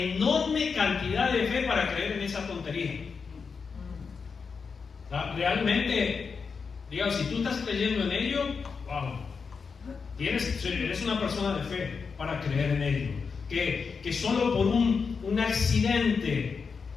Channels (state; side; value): quieter; right; 5.4 dB